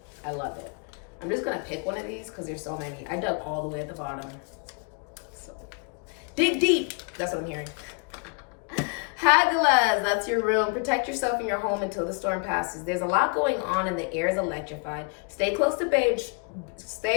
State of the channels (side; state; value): right; quieter; 39.0 dB